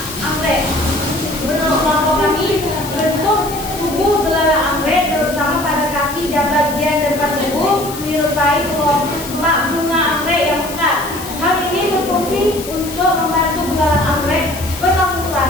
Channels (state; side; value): noise; left; hiss, 12 dB below the sound